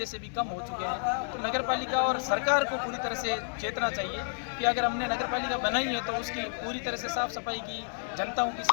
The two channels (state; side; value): silent; right; digital silence